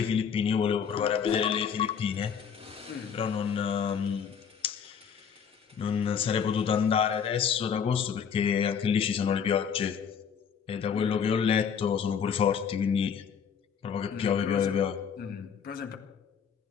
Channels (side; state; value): right; quieter; 7.2 dB